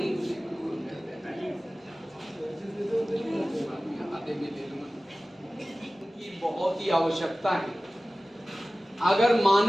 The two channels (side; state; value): both; normal; correlation 0.97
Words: आधे में ले लूंगा। बहुत बहुत ही आवश्यकता है। अगर